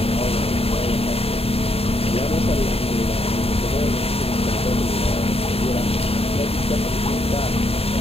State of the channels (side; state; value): right; late; 0.28 ms